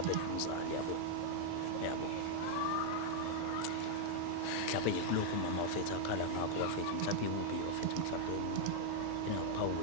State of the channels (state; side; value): different; both; correlation -0.01